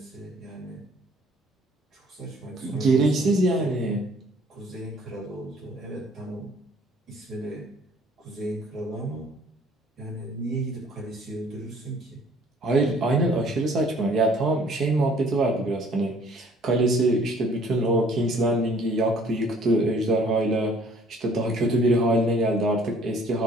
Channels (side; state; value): both; normal; correlation 0.57